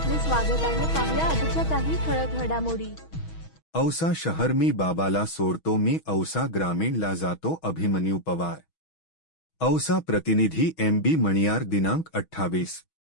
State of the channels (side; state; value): right; late; 6.2 ms